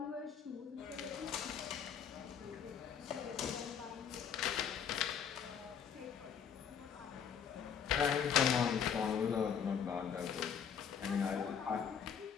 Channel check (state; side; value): quieter; right; 7.6 dB